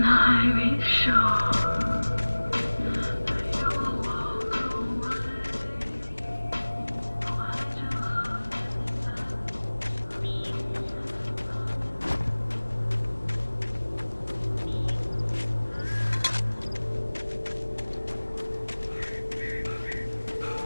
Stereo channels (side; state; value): both; inverted; correlation -1.00